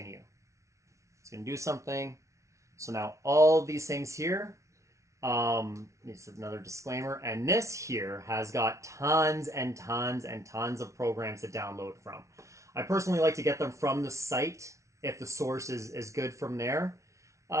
It's going to do something. So now all these things here, this is another disclaimer, and this here has got tons and tons and tons of programs to download from. I personally like to get them from the site, if the source is good from there.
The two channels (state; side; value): late; left; 0.14 ms